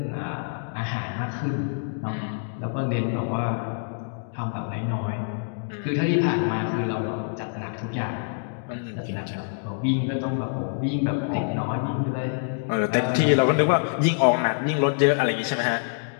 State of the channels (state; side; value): silent; right; digital silence